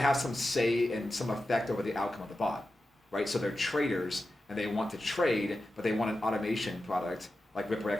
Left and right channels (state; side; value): normal; both; correlation 0.92